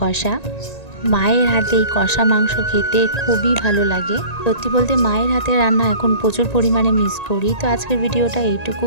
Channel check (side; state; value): right; late; 1.9 ms